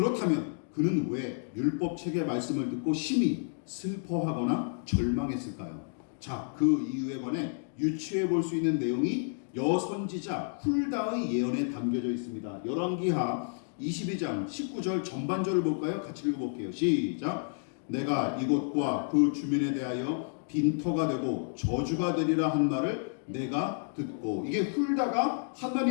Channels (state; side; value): silent; right; digital silence